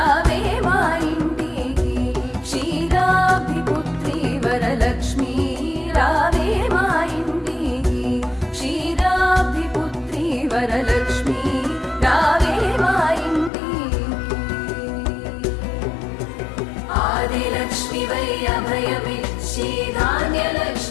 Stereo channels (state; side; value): drops out; right; at 13.5 s